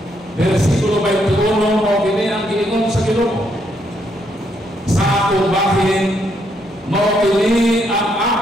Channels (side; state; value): both; normal; correlation 0.74